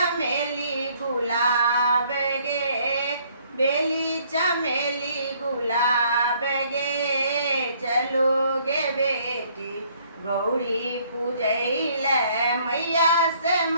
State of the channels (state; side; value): inverted; both; correlation -0.63